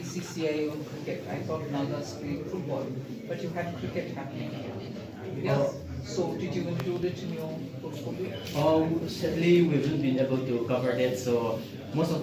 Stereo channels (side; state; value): both; identical; correlation 1.00